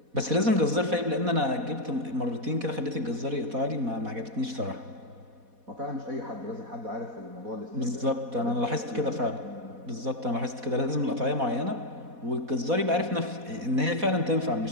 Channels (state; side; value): late; left; 4.1 ms